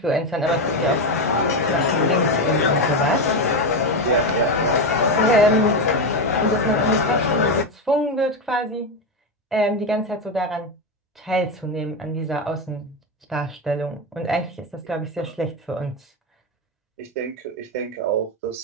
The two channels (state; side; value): normal; both; correlation 0.12